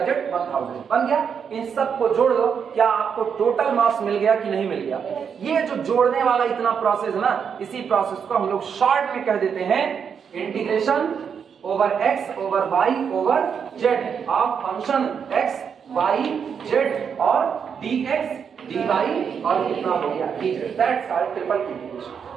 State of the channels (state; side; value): quieter; left; 7.0 dB